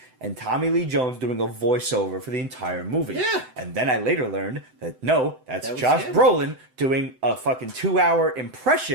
and Tommy Lee Jones doing a voiceover for the entire movie. Yeah. And then I later learned that no, that's That was Josh him. Brolin doing a fucking 2-hour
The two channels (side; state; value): left; late; 7.8 ms